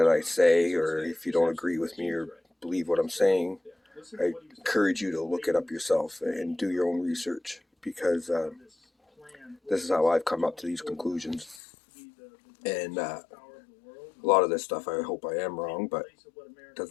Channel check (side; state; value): right; drops out; at 11.6 s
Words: I say, or if you don't agree with me or believe what I'm saying, I encourage you to look it up yourself and do your own research, because this is how I've come up to these conclusions. And a lot of this stuff, I hope I am wrong, but it